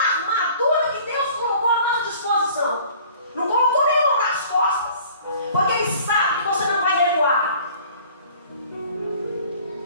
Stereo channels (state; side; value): inverted; both; correlation -0.50